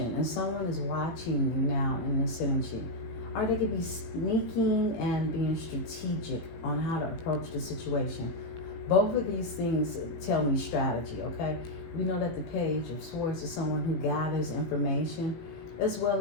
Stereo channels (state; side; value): late; right; 18 ms